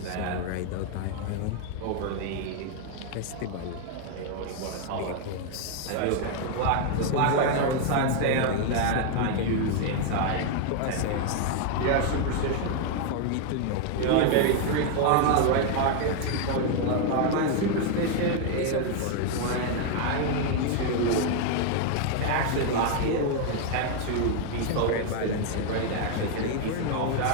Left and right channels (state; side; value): different; both; correlation 0.00